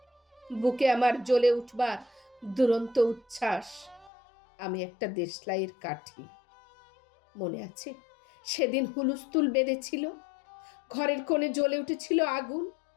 বুকে আমার জ্বলে উঠবার দুরন্ত উচ্ছ্বাস। আমি একটা দেশলাইয়ের কাঠি। মনে আছে সেদিন হুলুস্থুল বেঁধেছিল, ঘরের কোণে জ্বলে উঠেছিল আগুন।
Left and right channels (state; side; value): drops out; right; at 4.1 s